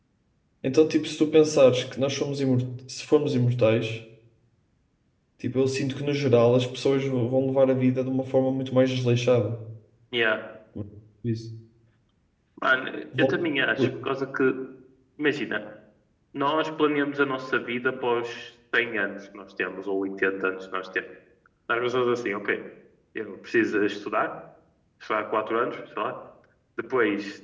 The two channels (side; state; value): both; identical; correlation 1.00